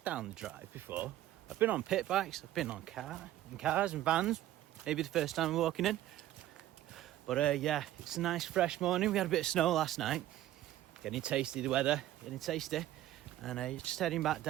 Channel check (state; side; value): quieter; left; 13.8 dB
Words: down the drive before. I've been on pit bikes, I've been on cars and vans. Maybe the first time walking in. But yeah, it's a nice fresh morning. We had a bit of snow last night. Getting tasty, the weather, getting tasty. And just heading back